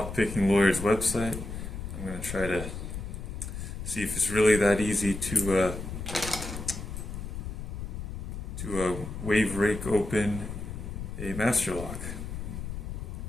Lawyer's website. I'm going to try to see if it's really that easy to wave rake open a master lock.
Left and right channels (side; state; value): left; noise; rumble, 7 dB below the sound